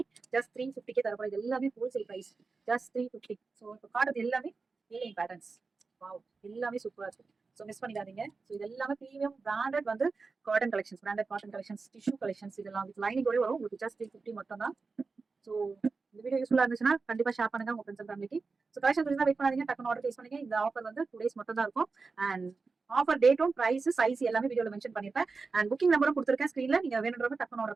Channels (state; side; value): quieter; left; 4.3 dB